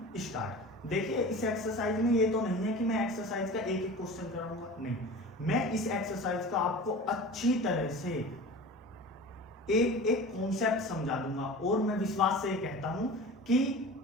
स्टार्ट। देखिए इस एक्सरसाइज में ये तो नहीं है कि मैं एक्सरसाइज का एक एक क्वेश्चन कराऊंगा, नहीं, मैं इस एक्सरसाइज का आपको अच्छी तरह से एक एक कॉन्सेप्ट समझा दूंगा और मैं विश्वास से कहता हूं कि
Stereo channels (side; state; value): both; normal; correlation 0.36